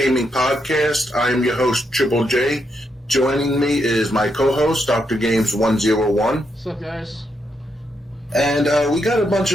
podcast. I am your host, Triple J. Joining me is my co-host, Dr. Games 101. What's up, guys? And we got a bunch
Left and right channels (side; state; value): both; normal; correlation 0.80